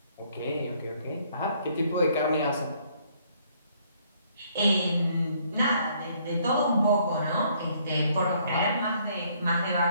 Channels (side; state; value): both; inverted; correlation -0.65